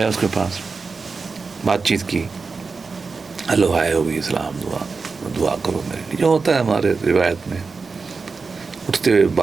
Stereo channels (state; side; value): quieter; left; 4.6 dB